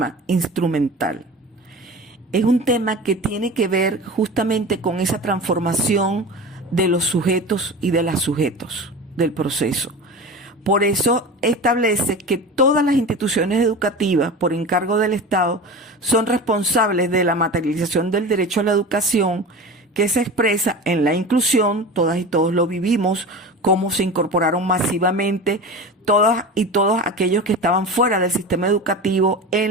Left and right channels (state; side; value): normal; both; correlation 0.31